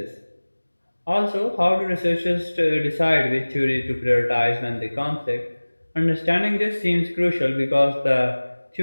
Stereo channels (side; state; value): both; inverted; correlation -1.00